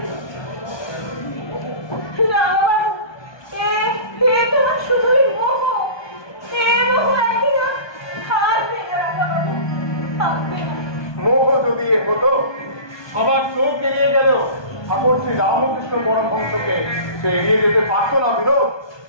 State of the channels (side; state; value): right; late; 1.2 ms